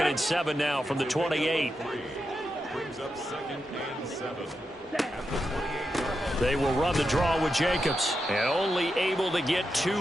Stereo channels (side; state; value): both; normal; correlation 0.87